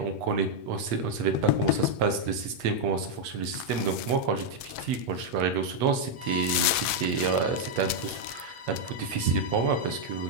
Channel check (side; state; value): left; late; 8.3 ms